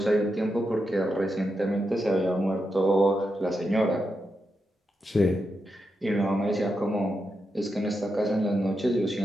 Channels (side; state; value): both; normal; correlation 0.86